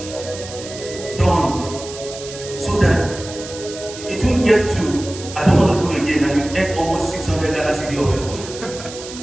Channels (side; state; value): right; noise; hiss, 13 dB below the sound